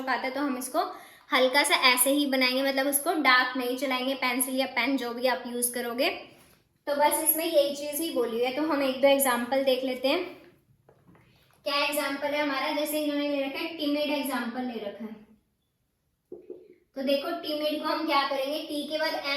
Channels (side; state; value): both; identical; correlation 1.00